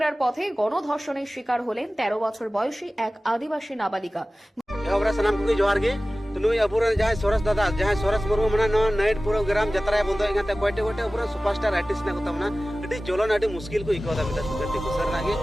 পথে গণধর্ষণের শিকার হলেন 13 বছর বয়সী এক আদিবাসী নাবালিকা। एवरा सनाम को जोहार गे तो नुई अपुरन जहां सोरस दादा जहां सोरस मुर्मू मना नो नाइट प्रोग्राम जतरा बंदो एगाते कोटे कोटे अपुरन सुपरस्टार आर्टिस्ट ना कोता मना अडी जोलन अडी मुश्किल को इकोदा मिता गति को सर नागे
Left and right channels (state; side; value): normal; both; correlation 0.97